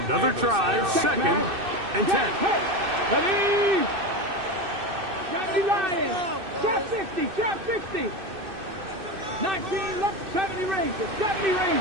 Another try, second and 10. Ready? Johnny Lion. Trap 60, trap 60. 19, 70 Rangers, 70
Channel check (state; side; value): late; left; 2.6 ms